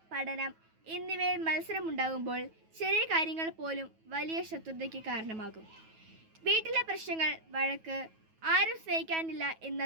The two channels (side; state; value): left; late; 9.2 ms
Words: പഠനം എന്നിവയിൽ മത്സരമുണ്ടാകുമ്പോൾ ചെറിയ കാര്യങ്ങൾ പോലും വലിയ ശത്രുതയ്ക്ക് കാരണമാകും. വീട്ടിലെ പ്രശ്നങ്ങൾ, വഴക്ക്, ആരും സ്നേഹിക്കാനില്ല എന്ന